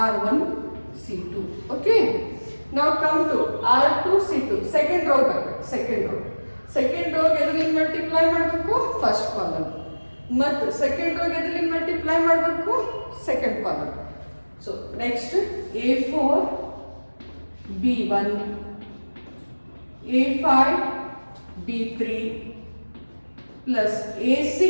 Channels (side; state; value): both; inverted; correlation -1.00